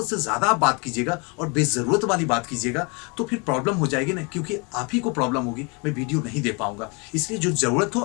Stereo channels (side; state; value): right; quieter; 31.0 dB